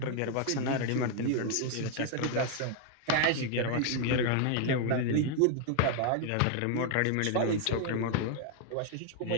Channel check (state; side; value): different; both; correlation 0.00